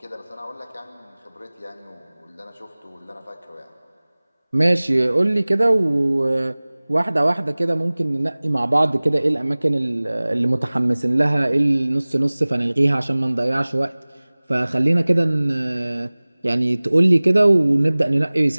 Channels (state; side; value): inverted; both; correlation -1.00